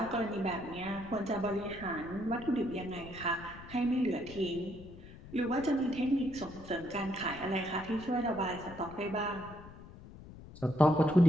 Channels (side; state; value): left; noise; rumble, 16 dB below the sound